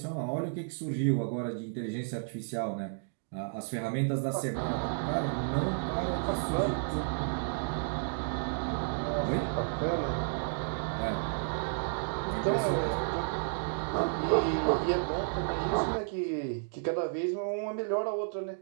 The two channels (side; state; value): left; silent; digital silence